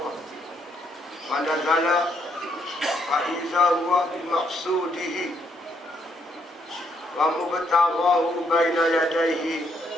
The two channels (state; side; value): normal; both; correlation 0.73